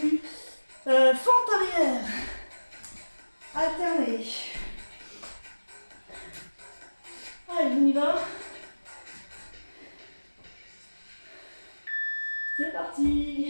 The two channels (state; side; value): inverted; both; correlation -1.00